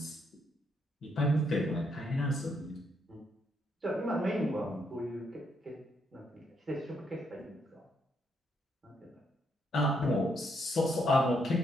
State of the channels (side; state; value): both; normal; correlation 0.75